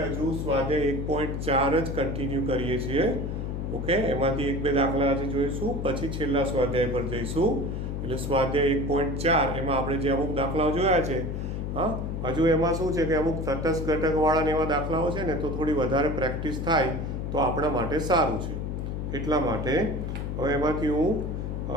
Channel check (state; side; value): noise; left; hum, 3 dB below the sound